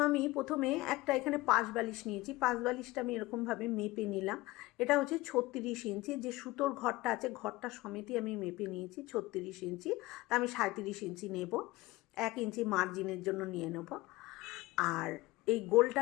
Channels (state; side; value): quieter; right; 19.6 dB